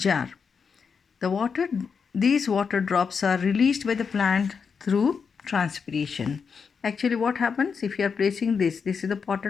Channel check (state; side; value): quieter; right; 5.9 dB